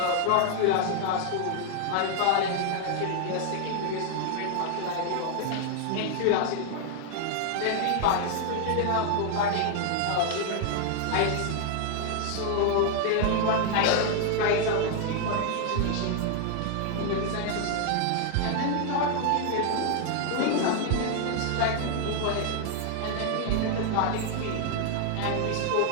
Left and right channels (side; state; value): both; different; correlation 0.00